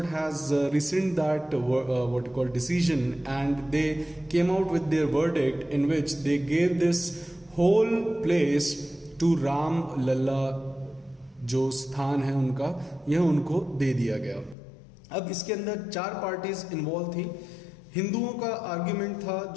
has rescind that what you call decision, and they came out with their verdict in which they gave this whole place to Ram Lalla. जो स्थान है उनका, यह उनको दे दिया गया. अब इसके अंदर 4 पार्टीज इन्वॉल्व थी. हिंदुओं का आर्ग्यूमेंट था,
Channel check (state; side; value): drops out; right; at 14.6 s